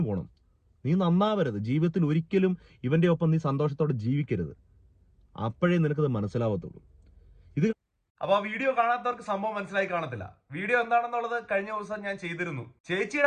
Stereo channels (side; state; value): both; identical; correlation 1.00